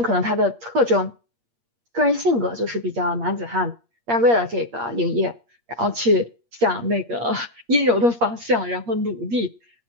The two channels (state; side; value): late; left; 8.5 ms